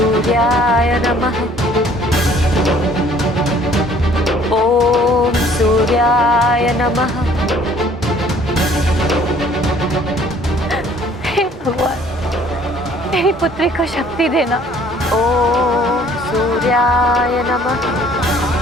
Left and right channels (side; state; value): both; normal; correlation 0.57